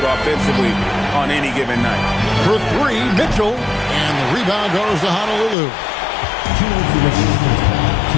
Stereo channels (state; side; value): drops out; right; at 5.6 s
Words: offensively on any given night. For 3, Mitchell. And the rebound goes to Honolulu.